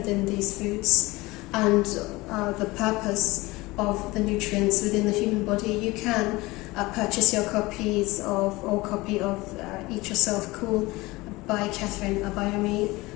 these foods and the purpose of the nutrients within the human body, you can purchase your copy of Eat Yourself Cool by Catherine Abayomi.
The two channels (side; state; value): right; quieter; 21.3 dB